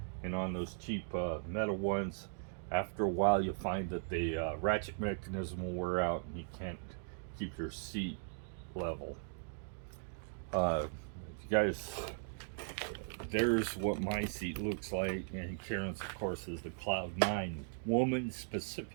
And on those cheap metal ones, after a while you find that the ratchet mechanism will wear out and you can't keep your seat level. You guys, there's what my seat looks like, and Karen's of course is the Cloud 9 woman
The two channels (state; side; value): silent; left; digital silence